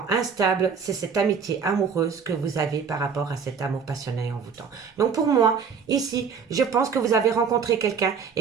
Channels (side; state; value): left; quieter; 6.3 dB